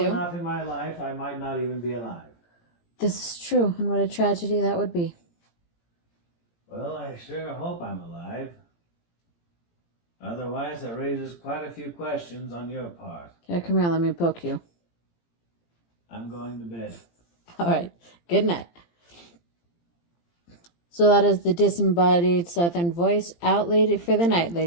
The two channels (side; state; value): right; late; 17 ms